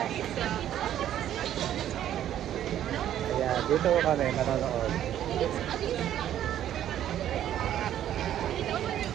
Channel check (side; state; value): left; quieter; 11.3 dB